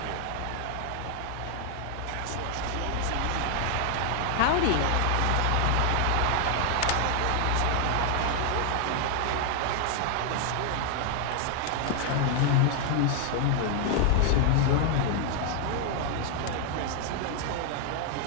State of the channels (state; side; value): different; both; correlation 0.00